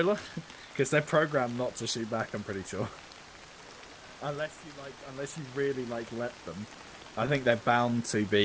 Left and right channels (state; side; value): identical; both; correlation 1.00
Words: Because they're programmed not to shoot back, I'm pretty sure. Unless you really, like, let them. I think they're bound to